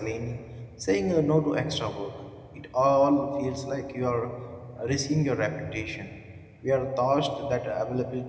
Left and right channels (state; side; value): identical; both; correlation 1.00